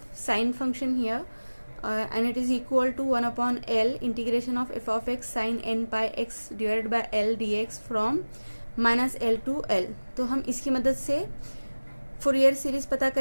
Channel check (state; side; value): inverted; both; correlation -1.00